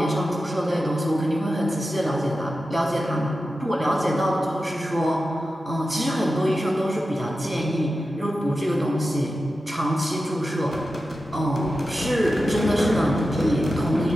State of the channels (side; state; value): both; normal; correlation 0.92